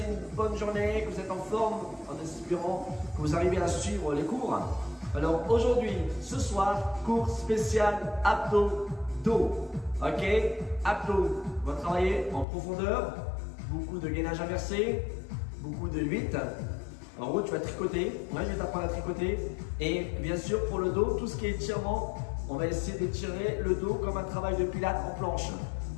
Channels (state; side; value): drops out; right; at 12.5 s